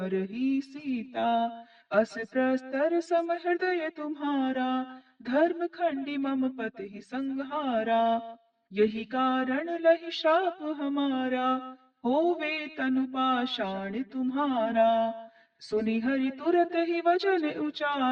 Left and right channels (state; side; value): identical; both; correlation 1.00